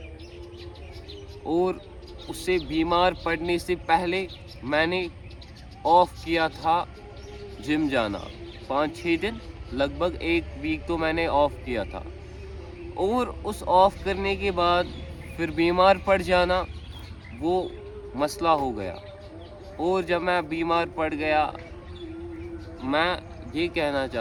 और उससे बीमार पड़ने से पहले मैंने ऑफ किया था जिम जाना, 5-6 दिन, लगभग 1 वीक तो मैंने ऑफ किया था। और उस ऑफ करने के बाद फिर बीमार पड़ जाना वो मसला हो गया। और जब मैं बीमार पड़ गया, मैं ये कहना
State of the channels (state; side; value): identical; both; correlation 1.00